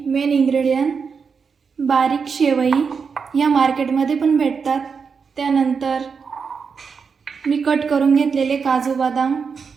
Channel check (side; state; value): left; quieter; 5.7 dB